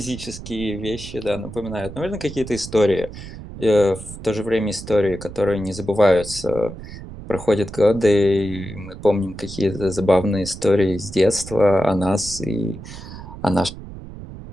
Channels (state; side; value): noise; right; rumble, 13 dB below the sound